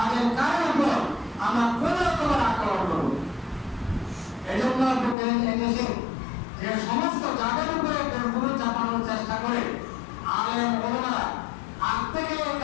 কারোর উপর আমরা কোন রকমের আক্রমণ করব। এই জন্য এদেশে যে সমস্ত যাদের উপরে গুরু চাপানোর চেষ্টা করে আলেম ওলামারা আগ থেকে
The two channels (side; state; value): right; drops out; at 5.2 s